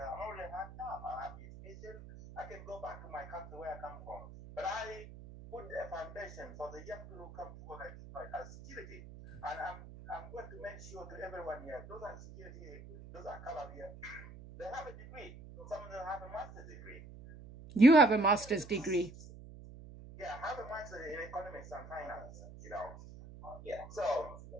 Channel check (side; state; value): right; noise; hum, 15 dB below the sound